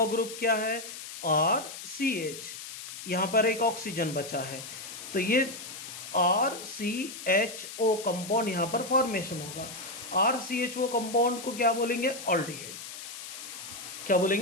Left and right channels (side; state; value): left; noise; hiss, 10 dB below the sound